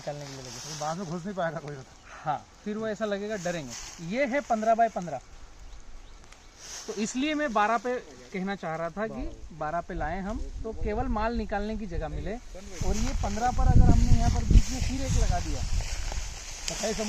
के लिए लगेगा। बाद में घुस नहीं पाएगा कोई। हाँ, फिर वो ऐसा लगेगा डरेंगे। ये है 15 बाय 15, तो इसलिए मैं 12 पे कहना चाह रहा था कि 12 पे लाएं हम, तो केवल माल निकालने की जगह मिले। और ये 15 पर अगर हमने यहाँ पर बीच में फिर एक लगा दिया, कटाई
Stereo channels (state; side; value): identical; both; correlation 1.00